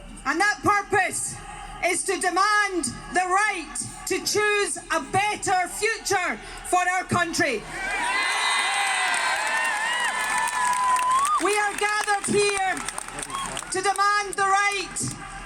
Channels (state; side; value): identical; both; correlation 1.00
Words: And that purpose is to demand the right to choose a better future for our country. We are gathered here to demand the right